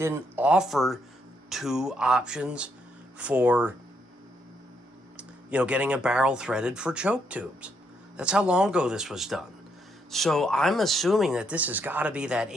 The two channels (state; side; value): normal; both; correlation 0.75